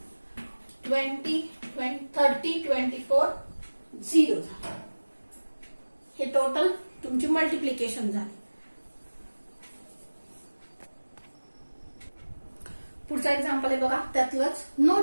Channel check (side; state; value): both; inverted; correlation -1.00